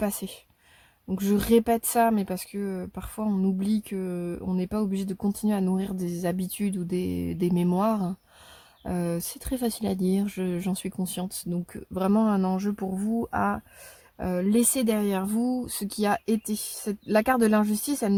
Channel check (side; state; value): both; identical; correlation 1.00